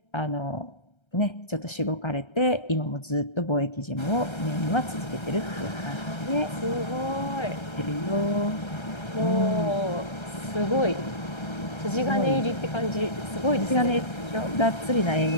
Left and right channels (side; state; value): right; late; 1.3 ms